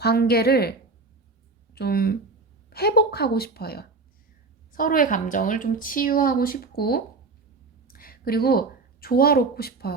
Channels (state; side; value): quieter; left; 3.9 dB